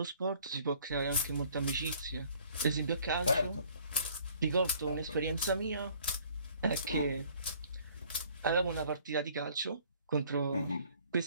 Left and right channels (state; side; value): inverted; both; correlation -0.57